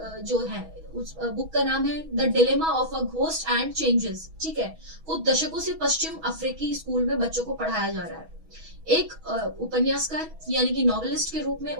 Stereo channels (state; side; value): late; left; 6.2 ms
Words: जो है, उस बुक का नाम है the dilemma of a ghost and changes. ठीक है, वो दशकों से पश्चिम अफ्रीकी स्कूल में बच्चों को पढ़ाया जा रहा है। एक उपन्यासकार यानी कि नॉवेलिस्ट के रूप में